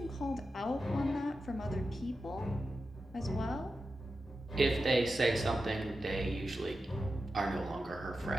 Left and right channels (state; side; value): normal; both; correlation 0.91